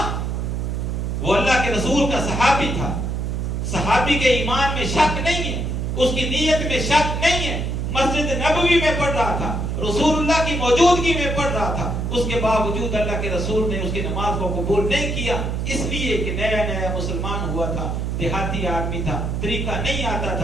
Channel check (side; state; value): right; noise; hum, 1 dB below the sound